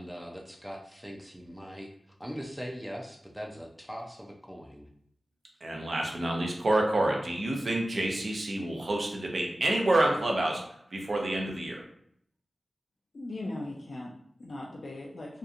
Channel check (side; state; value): both; normal; correlation 0.95